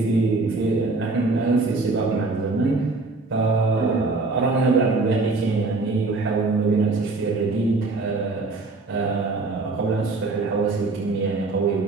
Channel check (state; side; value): quieter; left; 3.5 dB